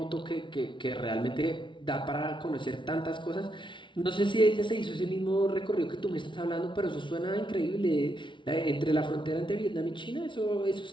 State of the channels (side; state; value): right; late; 0.24 ms